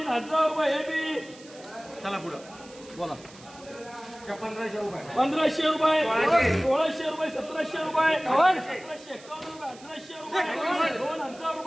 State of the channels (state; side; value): noise; right; hiss, 21 dB below the sound